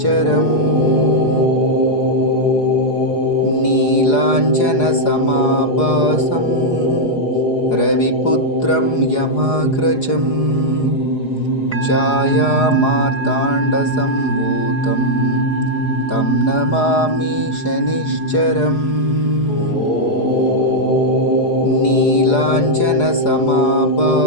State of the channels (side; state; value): right; late; 4.8 ms